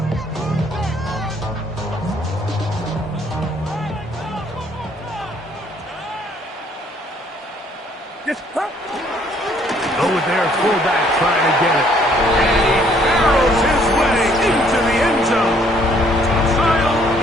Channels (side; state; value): both; normal; correlation 0.63